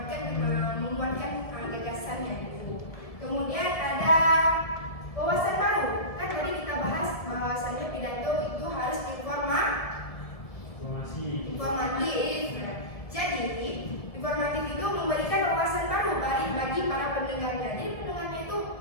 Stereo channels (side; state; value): right; late; 1.7 ms